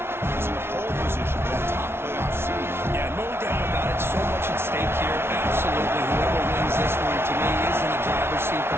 is in a pole position for that top playoff seed. Yeah, no doubt about it. So much at stake here. Absolutely. Whoever wins this one, to me, is in the driver's seat for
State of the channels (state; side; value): late; left; 0.12 ms